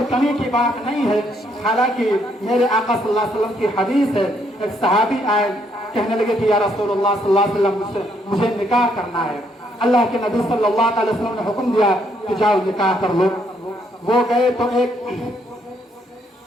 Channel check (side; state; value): both; normal; correlation 0.71